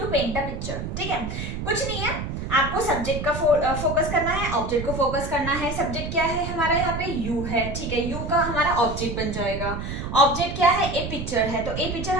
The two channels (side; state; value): right; noise; rumble, 5 dB below the sound